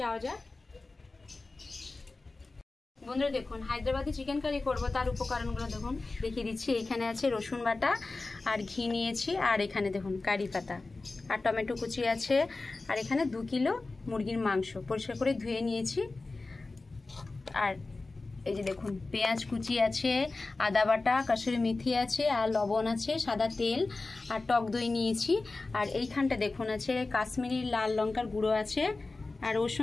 যাওয়া যাক। বন্ধুরা দেখুন, হায়দ্রাবাদি চিকেন কারি করবো তার উপকরণগুলো দেখুন দেখিয়ে দিচ্ছি। এখানে আছে রসুন বাটা আর ঘি নিয়েছি, আর এখানে দেখুন কারি পাতা আর টমেটো কুচি আছে, আর এখানে 2 কিলো মুরগির মাংস পরিষ্কার করে ধুয়ে নিয়েছি। আর এই যে দেখুন পেঁয়াজ কুচি আছে, আদা বাটা, কাসুরি মেথি আছে, আর লবণ আছে, সাদা তেল আর টক দই নিয়েছি। আর এইখানটা দেখুন আছে কাশ্মীরি লাল লঙ্কার গুঁড়ো আছে, আর ওর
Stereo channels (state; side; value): quieter; right; 3.4 dB